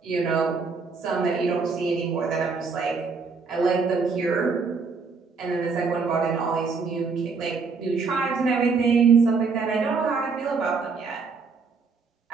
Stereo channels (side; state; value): left; quieter; 4.8 dB